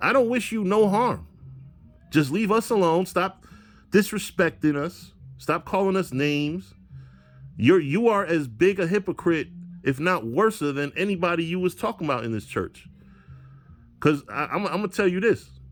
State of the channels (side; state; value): both; identical; correlation 1.00